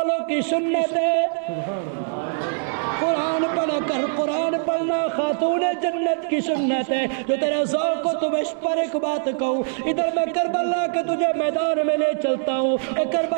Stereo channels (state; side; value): silent; left; digital silence